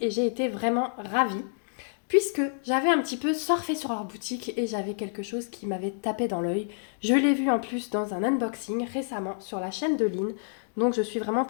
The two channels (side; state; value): right; silent; digital silence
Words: j'ai été vraiment ravie puisque j'avais un petit peu surfé sur leur boutique et j'avais quelque chose qui m'avait tapé dans l'œil. Je l'ai vu en plus dans un unboxing récemment sur la chaîne de Lynn, donc je suis vraiment